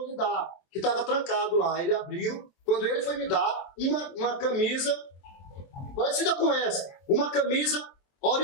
lhe dar." Que estava trancado lá. Ele abriu. Quando ele foi me dar uma camisa parecida com essa, uma camisa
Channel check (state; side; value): late; right; 23 ms